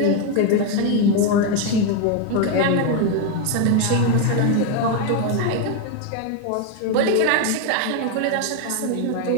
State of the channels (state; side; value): different; both; correlation 0.01